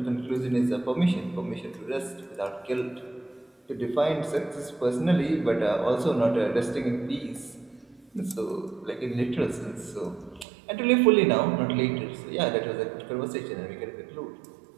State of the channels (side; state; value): left; drops out; at 10.5 s